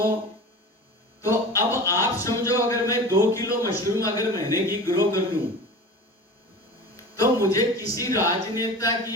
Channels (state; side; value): normal; both; correlation 0.34